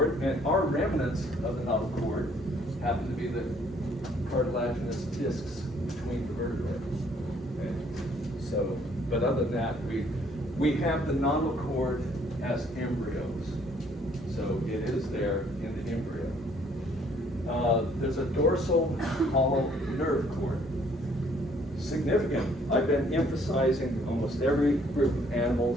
and our remnants of the notochord cord happen to be the cartilaginous discs between the vertebrae. Okay? So, but other than that, we have the notochord cord as embryos. So it is there in the embryo. There's a dorsal hollow nerve cord. Significant. I've been emphasizing almost every group of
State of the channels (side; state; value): both; normal; correlation 0.63